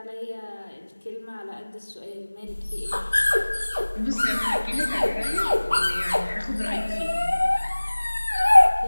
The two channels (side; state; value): both; inverted; correlation -1.00